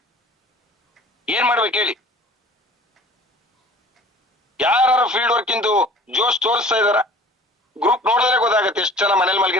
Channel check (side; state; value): both; normal; correlation 0.46